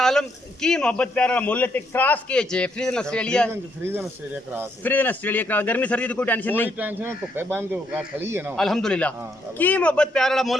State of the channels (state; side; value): normal; both; correlation 0.74